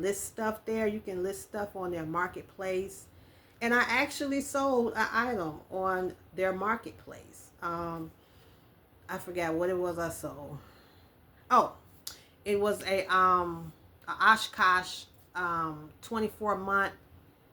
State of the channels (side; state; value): both; identical; correlation 1.00